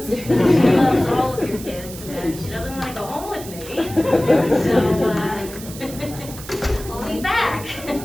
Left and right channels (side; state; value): right; noise; hiss, 14 dB below the sound